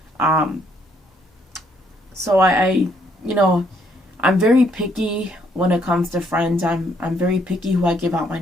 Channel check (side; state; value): both; normal; correlation 0.69